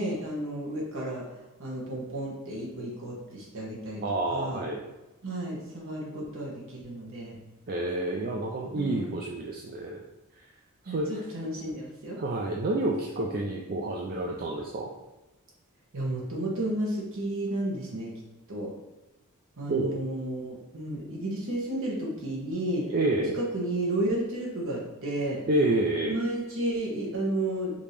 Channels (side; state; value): both; normal; correlation 0.29